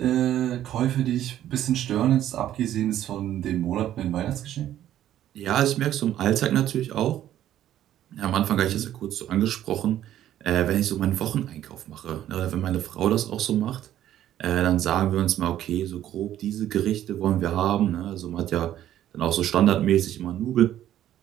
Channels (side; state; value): left; quieter; 12.0 dB